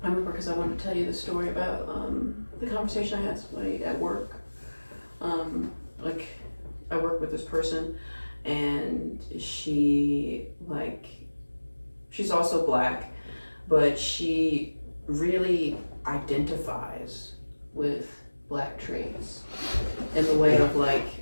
I remember because I wanted to tell you the story about the conversation I had with somebody at work. I work with this person, and she's also black, but she really identifies with black traits in the way of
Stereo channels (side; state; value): both; inverted; correlation -1.00